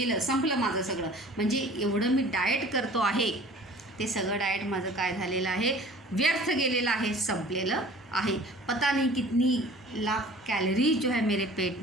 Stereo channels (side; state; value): both; normal; correlation 0.46